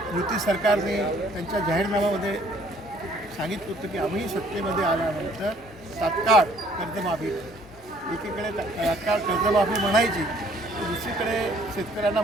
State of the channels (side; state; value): both; normal; correlation 0.60